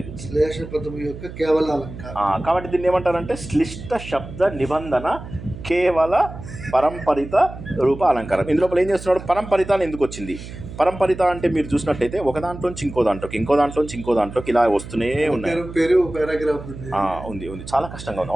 ఇది శ్లేష పదం యొక్క కేవల అలంకారం. కాబట్టి దీన్ని ఏమంటారంటే శ్లిష్ట శబ్ద నిబంధన కేవల పరంపరిత రూప అలంకారం. ఇందులోపల ఏం చేస్తున్నాడు? పరంపరిత ఎందుకు వచ్చింది? పరంపరిత అంటే మీరు చూసినట్టయితే ఒక దాంట్లోంచి ఇంకో దాంట్లోకి ఇలా వస్తూనే ఉన్నాయి. ఉంది చాలా కష్టంగా ఉంది.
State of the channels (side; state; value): right; noise; hum, 12 dB below the sound